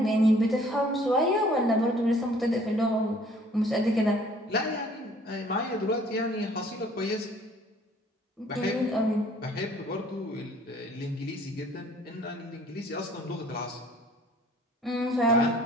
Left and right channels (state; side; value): normal; both; correlation 0.56